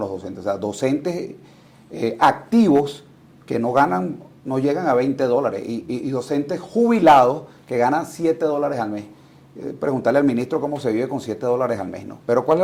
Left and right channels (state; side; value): identical; both; correlation 1.00